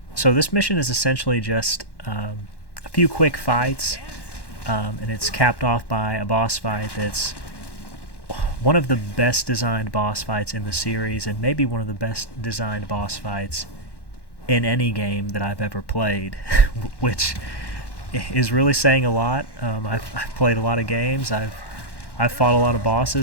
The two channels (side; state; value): right; late; 1.1 ms